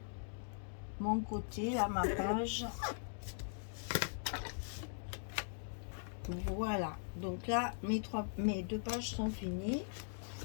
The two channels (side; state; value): right; silent; digital silence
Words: côté, là ma page. Voilà, donc là mes deux pages sont finies.